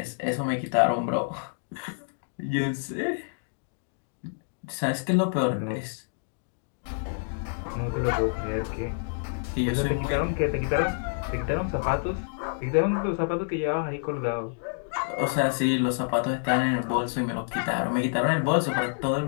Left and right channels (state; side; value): silent; right; digital silence